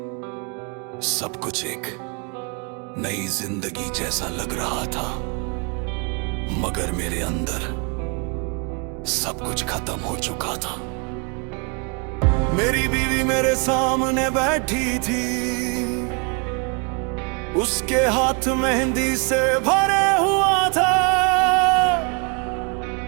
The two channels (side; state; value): left; quieter; 34.3 dB